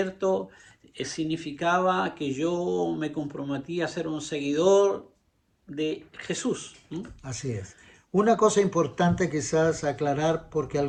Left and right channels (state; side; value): identical; both; correlation 1.00